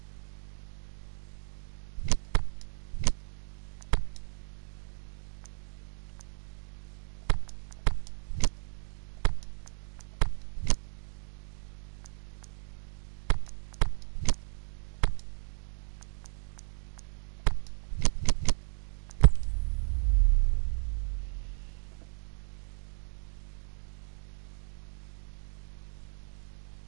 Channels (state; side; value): silent; left; digital silence